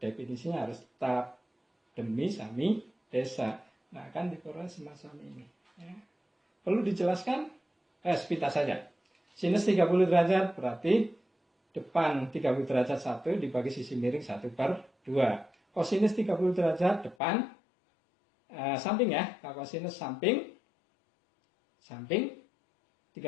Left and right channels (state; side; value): drops out; right; at 17.2 s